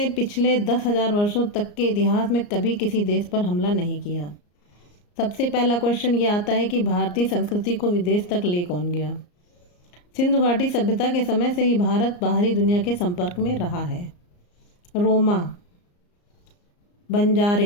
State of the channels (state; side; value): late; right; 34 ms